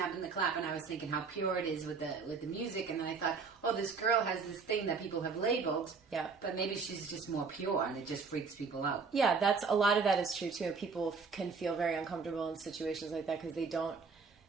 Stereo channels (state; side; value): quieter; left; 5.0 dB